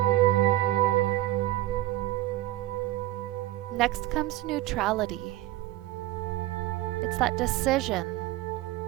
Next comes neutrality. It's that decision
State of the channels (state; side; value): quieter; left; 15.9 dB